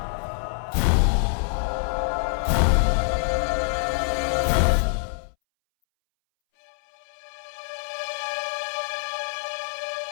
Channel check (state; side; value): silent; right; 62 dB below the other